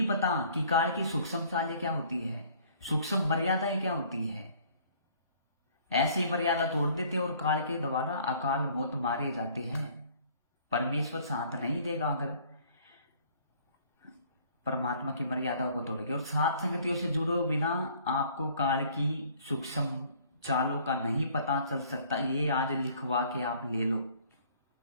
पता कि काल की सूक्ष्म चालें क्या होती है, सूक्ष्म मर्यादाएं क्या होती है। ऐसी मर्यादा तोड़ देते और काल के द्वारा अकाल मौत मारे जाते हैं। परमेश्वर साथ नहीं देगा अगर परमात्मा की मर्यादाओं को तोड़ोगे। और सात संगतियों से जुड़े बिना आपको काल की सूक्ष्म चालों का नहीं पता चल सकता। ये आज लिखवा के आप ले लो।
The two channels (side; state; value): both; inverted; correlation -0.56